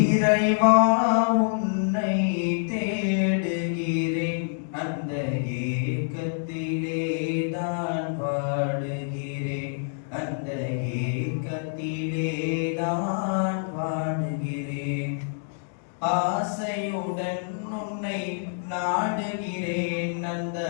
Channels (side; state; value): right; silent; digital silence